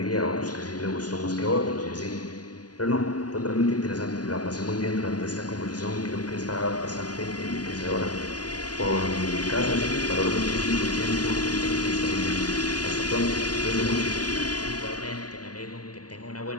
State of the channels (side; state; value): right; late; 0.69 ms